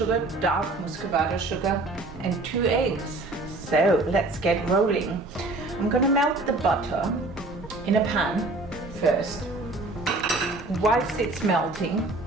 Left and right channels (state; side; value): quieter; left; 3.0 dB